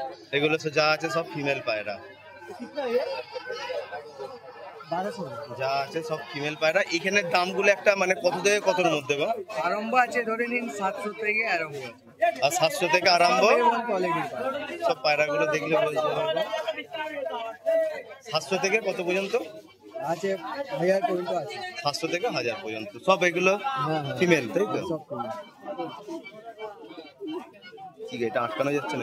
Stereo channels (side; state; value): both; identical; correlation 1.00